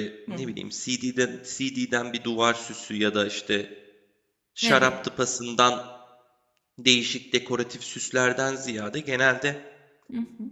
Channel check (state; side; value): identical; both; correlation 1.00